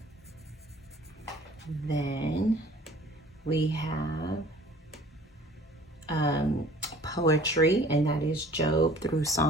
Then we have poetry, and that is Job through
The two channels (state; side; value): normal; both; correlation 0.50